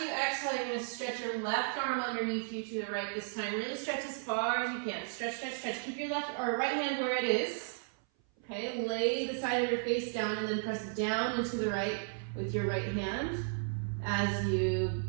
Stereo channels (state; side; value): silent; left; 55 dB below the other